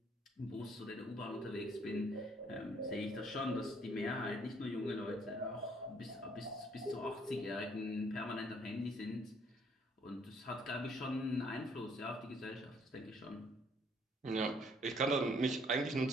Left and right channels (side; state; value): both; normal; correlation 0.63